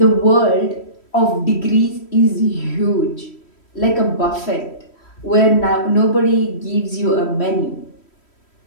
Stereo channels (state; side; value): late; right; 3.1 ms